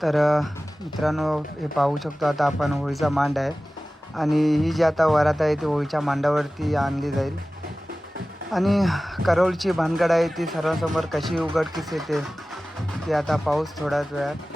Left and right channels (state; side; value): normal; both; correlation 0.97